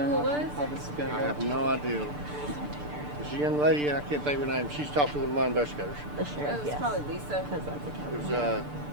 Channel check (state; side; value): late; left; 6.8 ms